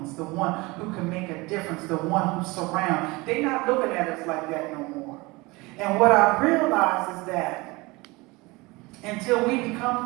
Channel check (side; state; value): left; quieter; 23.6 dB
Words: the one who can make a difference, the one who surrounds. They're not looking at us like that no more. And what I realize is that until we